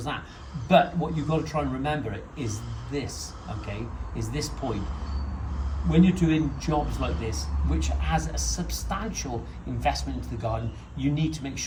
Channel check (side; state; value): both; identical; correlation 1.00